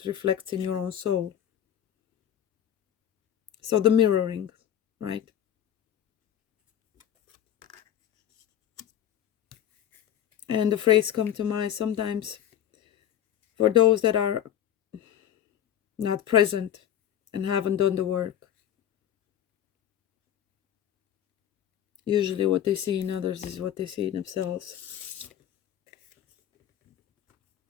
reflects in your own soul. So the mirroring, right? And the phrase come to mind sometimes for those that are not present and haven't done the work. Usually what they see in others is what they see in themselves.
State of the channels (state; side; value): quieter; right; 10.6 dB